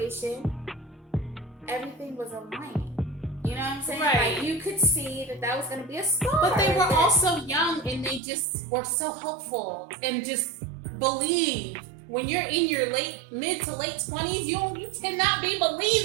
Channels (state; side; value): drops out; left; at 8.2 s